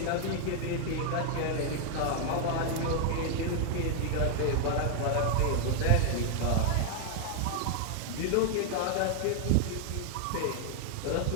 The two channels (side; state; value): both; different; correlation 0.00